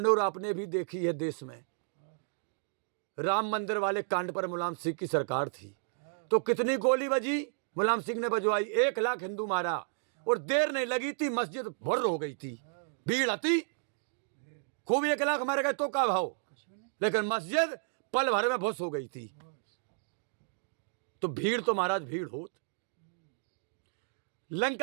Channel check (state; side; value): silent; left; digital silence